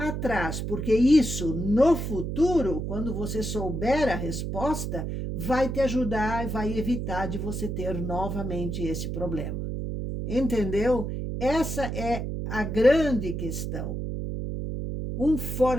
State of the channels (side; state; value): right; noise; hum, 3 dB below the sound